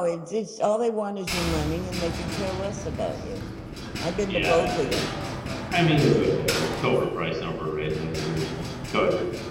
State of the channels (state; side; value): identical; both; correlation 1.00